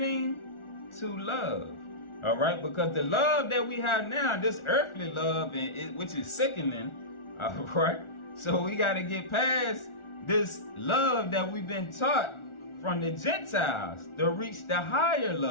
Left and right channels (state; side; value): late; right; 1.4 ms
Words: to love. All right, because the love that we have now, this earthly love, which is sickening, all right, so we got to get past this love that we've been taught from the Gentiles to reach the higher